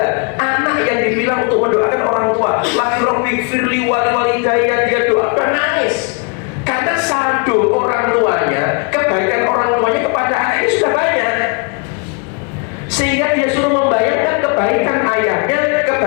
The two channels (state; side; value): quieter; right; 35.5 dB